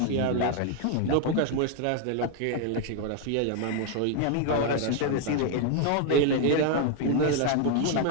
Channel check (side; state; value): both; different; correlation 0.00